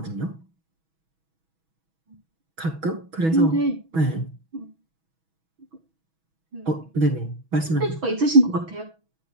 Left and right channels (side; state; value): left; late; 6.2 ms